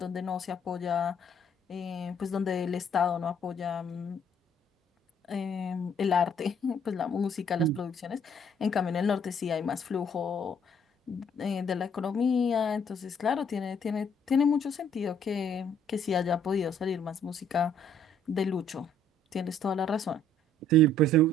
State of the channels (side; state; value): both; normal; correlation 0.63